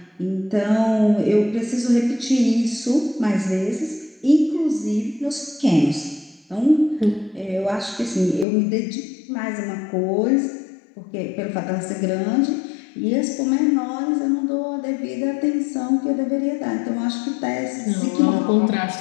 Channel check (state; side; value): drops out; right; at 8.5 s